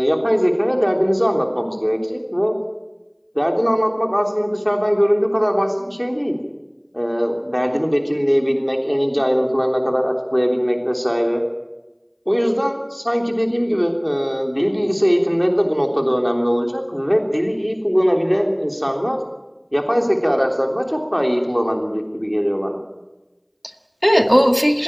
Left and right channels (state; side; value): identical; both; correlation 1.00